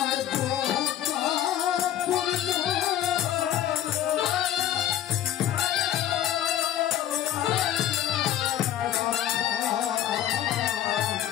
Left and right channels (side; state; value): right; quieter; 11.7 dB